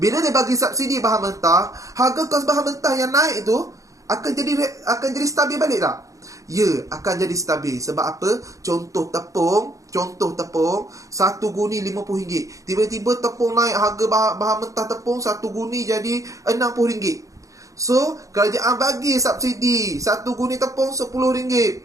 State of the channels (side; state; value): left; late; 0.16 ms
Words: Bila dia bagi subsidi bahan mentah, harga kos bahan mentah yang naik tu akan jadi stabil balik tak? Ya, akan jadi stabil. Sebab apa? Contoh tepung, 1 guni RM50. Tiba-tiba tepung naik, harga bahan mentah tepung 1 guni jadi RM60. So kerajaan bagi subsidi 1 guni tepung RM10.